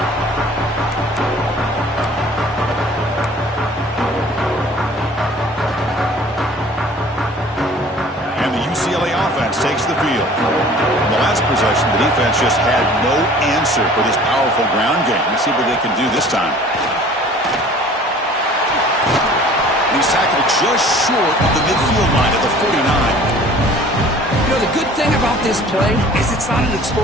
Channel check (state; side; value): normal; both; correlation 0.49